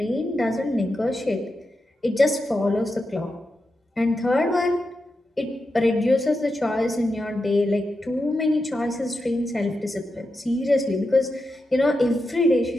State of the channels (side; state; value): both; normal; correlation 0.88